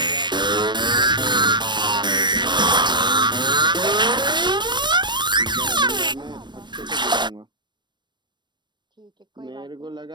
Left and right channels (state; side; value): late; left; 0.22 ms